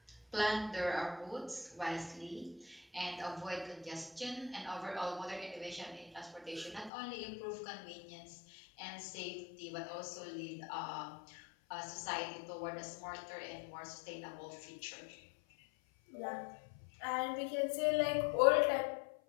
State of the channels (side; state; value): right; drops out; at 6.9 s